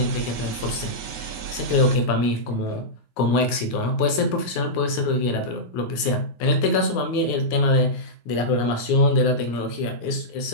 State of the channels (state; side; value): late; right; 9.5 ms